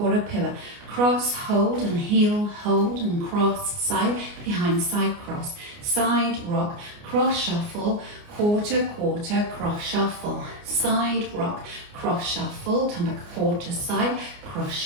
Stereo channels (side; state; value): left; late; 29 ms